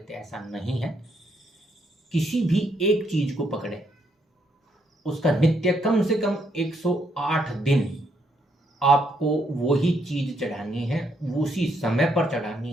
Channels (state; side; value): normal; both; correlation 0.74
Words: हैं। ऐसा नहीं है। किसी भी एक चीज को पकड़ें उसका नित्य कम से कम 108 दिन आपको वही चीज चढ़ानी है, उसी समय पर